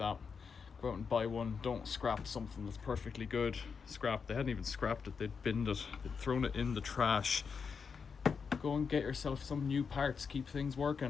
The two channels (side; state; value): right; quieter; 5.8 dB